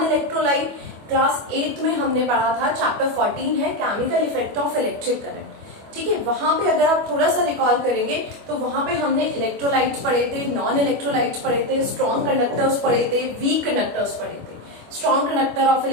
Class 8 में हमने पढ़ा था, चैप्टर 14 है chemical effect of electric current. ठीक है, वहां पे अगर आप थोड़ा सा रिकॉल करेंगे तो वहां पे हमने इलेक्ट्रोलाइट्स पढ़े थे, नॉन इलेक्ट्रोलाइट्स पढ़े थे, स्ट्रॉन्ग कंडक्टर्स पढ़े थे, वीक कंडक्टर्स पढ़े थे. Strong conductor of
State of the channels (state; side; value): late; left; 25 ms